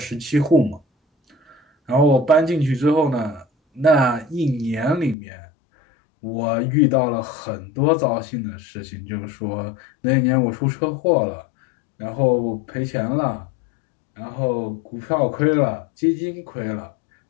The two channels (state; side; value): drops out; right; at 5.2 s